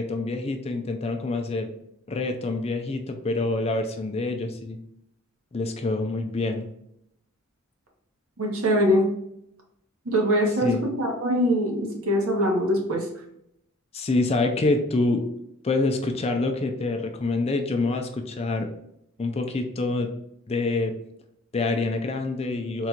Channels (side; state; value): both; normal; correlation 0.51